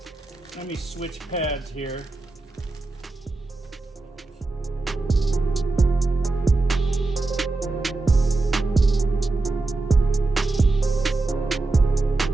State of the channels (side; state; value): left; quieter; 3.3 dB